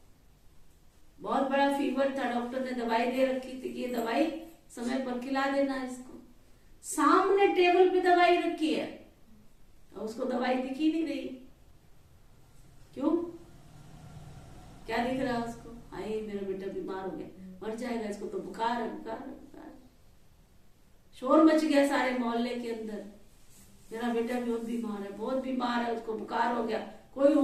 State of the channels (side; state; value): both; identical; correlation 1.00